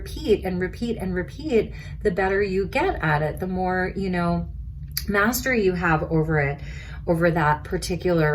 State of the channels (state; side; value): identical; both; correlation 1.00